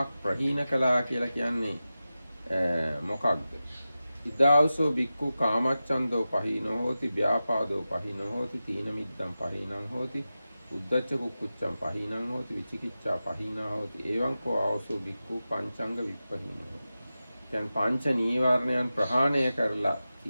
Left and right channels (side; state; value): both; inverted; correlation -0.94